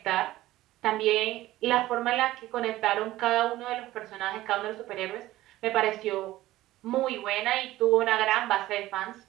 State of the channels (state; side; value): quieter; left; 16.1 dB